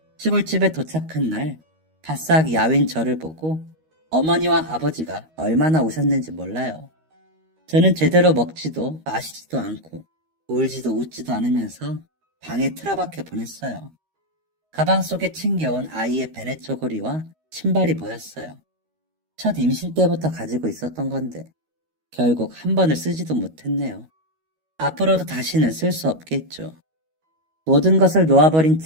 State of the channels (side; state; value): left; late; 13 ms